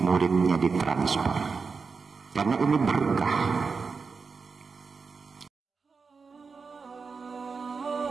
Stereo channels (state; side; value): quieter; left; 4.9 dB